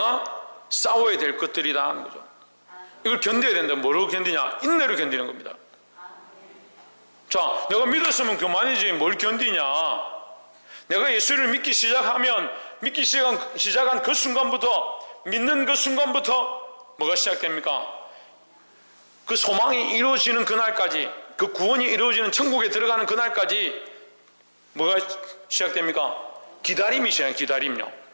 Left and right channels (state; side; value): inverted; both; correlation -1.00